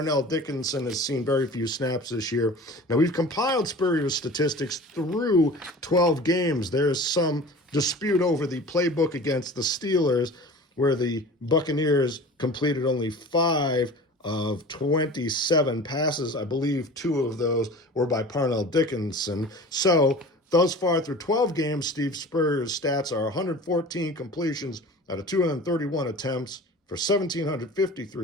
Dickinson has seen very few snaps this year. Now, we've compiled Spurrier's statistics through 12 games. There's some dispute over the playbook against the Steelers, where the Buccaneers completed only 5 of 27 passes. I believe 2 of those were by Parnell Dickinson. So, thus far through 12 games, Steve Spurrier's stats are 114 completions out of 231 attempts, for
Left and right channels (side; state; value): both; normal; correlation 0.39